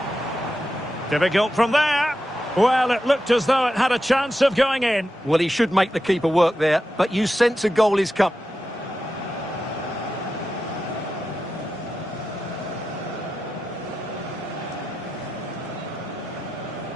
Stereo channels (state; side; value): normal; both; correlation 0.90